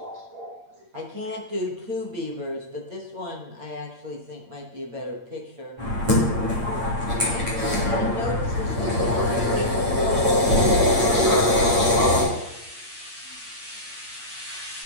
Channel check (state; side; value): late; left; 8.7 ms